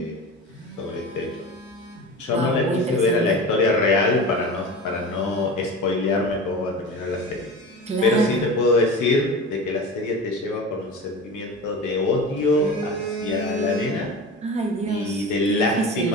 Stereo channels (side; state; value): both; normal; correlation 0.31